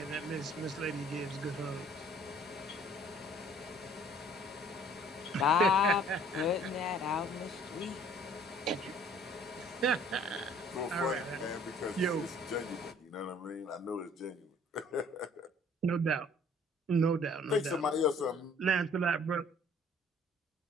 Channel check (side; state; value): both; normal; correlation 0.56